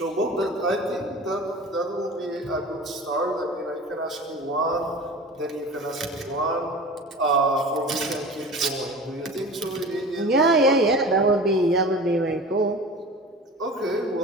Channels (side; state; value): both; normal; correlation 0.37